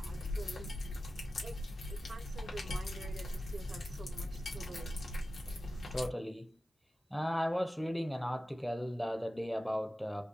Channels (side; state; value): both; normal; correlation 0.94